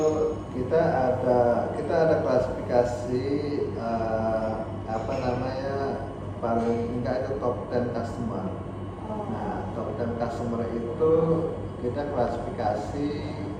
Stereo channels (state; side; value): identical; both; correlation 1.00